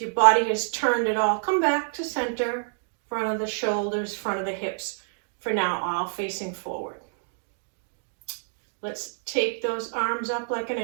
your body has turned at all, come back to center, front of the shoulders, front of the hips, for now, all facing forward. Let's take those arms up like an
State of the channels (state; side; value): silent; left; digital silence